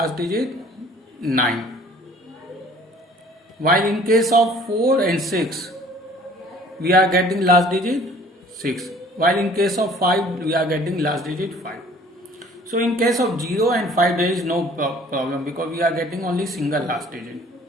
digit 9. While in case of 4 and 6 we are getting last digit 6. While in case of 5 we are getting last digit 5. So in case of 0 and 5 there is no problem because we are getting only single last digit.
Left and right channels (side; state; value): both; normal; correlation 0.52